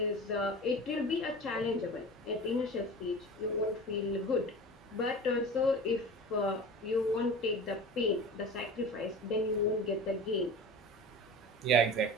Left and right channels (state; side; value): normal; both; correlation 0.34